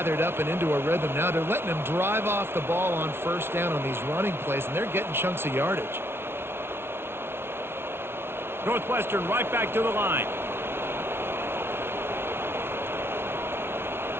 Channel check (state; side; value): late; left; 0.12 ms